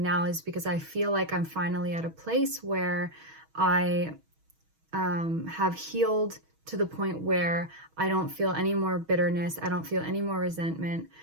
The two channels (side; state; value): left; late; 6.3 ms